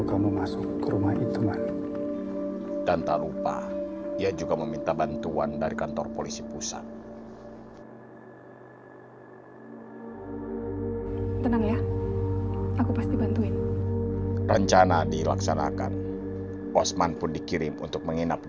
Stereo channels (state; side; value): identical; both; correlation 1.00